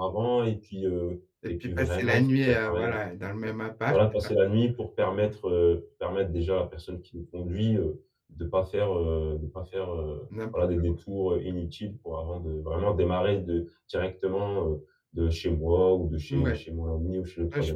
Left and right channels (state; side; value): identical; both; correlation 1.00